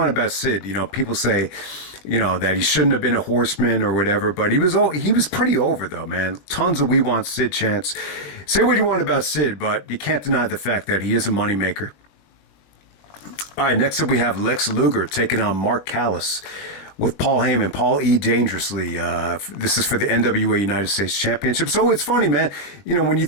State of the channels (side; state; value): right; late; 20 ms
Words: about Sid. People say that he shouldn't have been a Horseman or whatever. But he was pretty over though, man. Tons of "We Want Sid" chants. Say what you want about Sid, but you can't deny the fact that he is a moneymaker. All right, next up we have Lex Luger taking on Mark Callas with Paul Heyman. Paul E. Dangerously. This is for the NWA United States Championship. So it's funny, man. When you